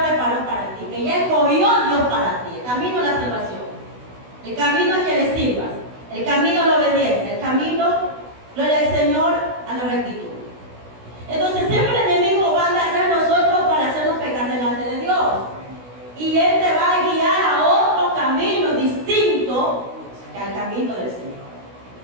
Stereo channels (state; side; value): late; left; 16 ms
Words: preparó para ti, que ya escogió Dios para ti, el camino de la salvación, el camino a que le sirvas, el camino a la obediencia, el camino, gloria al Señor, a la rectitud. Entonces siempre el enemigo va a andar tras nosotros para hacernos pecar delante de Dios. Y Él te va a guiar a otro camino distinto que al camino del Señor.